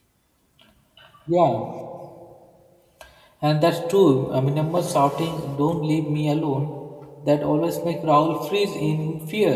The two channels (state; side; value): identical; both; correlation 1.00